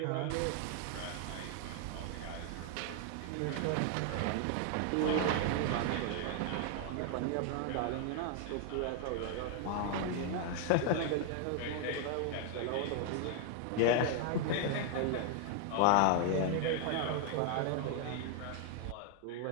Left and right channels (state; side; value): different; both; correlation 0.00